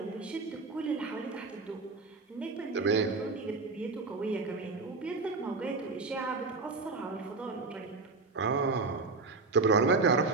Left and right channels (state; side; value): quieter; left; 3.9 dB